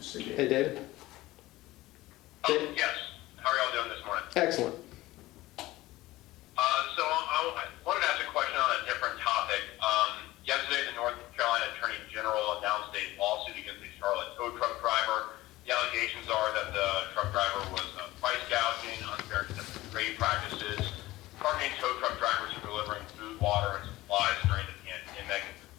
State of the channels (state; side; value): quieter; right; 17.9 dB